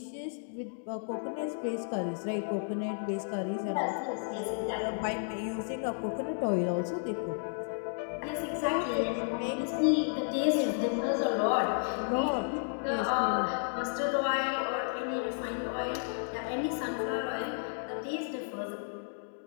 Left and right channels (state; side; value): silent; right; digital silence